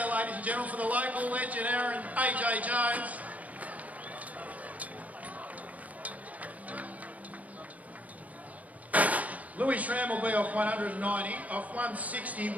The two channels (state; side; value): late; left; 0.070 ms